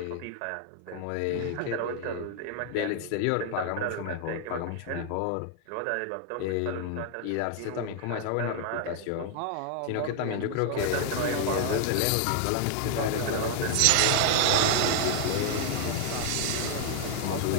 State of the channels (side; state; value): both; different; correlation 0.00